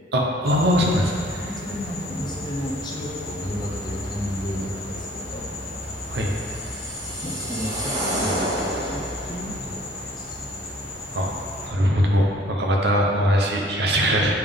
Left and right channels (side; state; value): both; normal; correlation 0.55